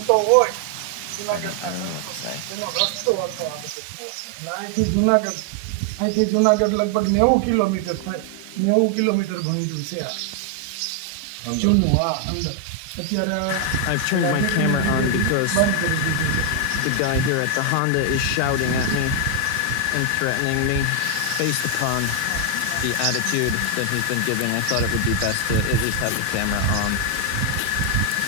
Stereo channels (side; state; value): both; different; correlation 0.00